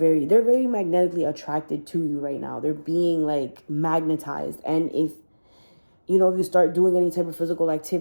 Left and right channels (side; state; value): both; inverted; correlation -1.00